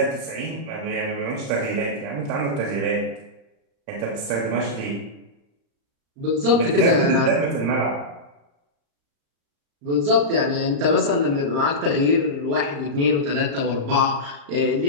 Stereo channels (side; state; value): left; late; 35 ms